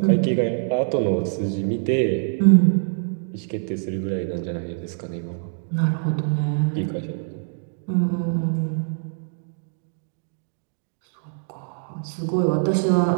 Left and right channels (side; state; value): left; silent; digital silence